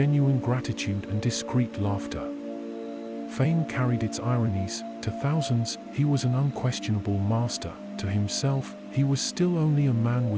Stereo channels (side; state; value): both; identical; correlation 1.00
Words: gratitude and discreet laughter. Fame carried its ironies. To thousands, he was an unquestionable master. To himself, he was still only a man